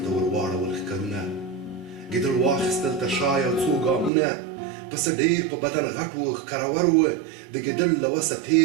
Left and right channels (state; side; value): drops out; left; at 4.1 s